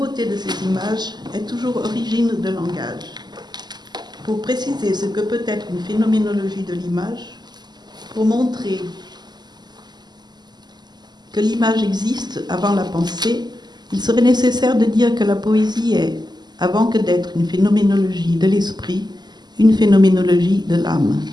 de ses images, est toujours origine de langage. Pour préciser ce que peut être une phénoménologie de l'image, pour montrer que l'image existe avant la pensée, il serait nécessaire de dire que la poésie est, avant que d'être une phénoménologie de l'esprit, une phénoménologie de l'âme.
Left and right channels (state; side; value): late; left; 0.21 ms